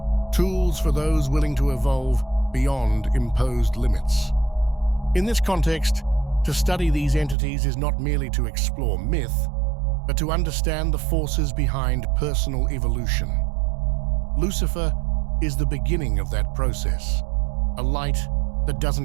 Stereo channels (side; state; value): left; drops out; at 7.4 s